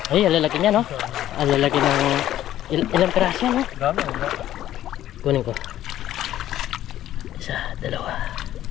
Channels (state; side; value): quieter; right; 12.8 dB